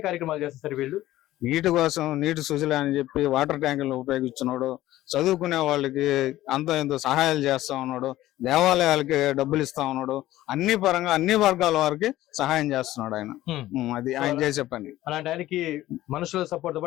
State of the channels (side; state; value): right; quieter; 15.3 dB